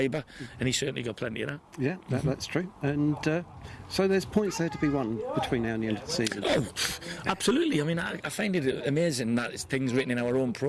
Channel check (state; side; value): identical; both; correlation 1.00